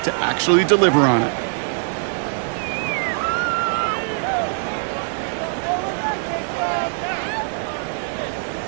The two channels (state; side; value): silent; left; 64 dB below the other